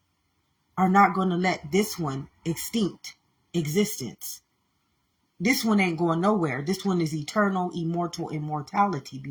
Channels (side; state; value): both; identical; correlation 1.00